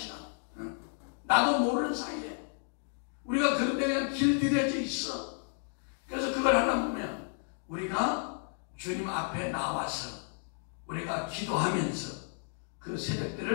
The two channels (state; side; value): silent; right; 56 dB below the other